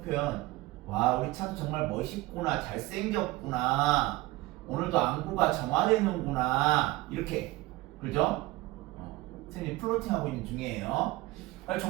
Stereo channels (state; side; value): quieter; left; 19.4 dB